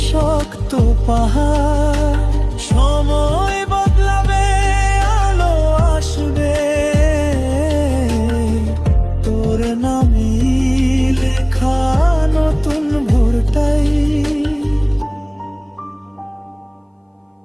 শক্ত পাহাড়। সময় বদলাবে, আলো আসবে, তোর নামে লেখা নতুন ভোরটাই।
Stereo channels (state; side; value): identical; both; correlation 1.00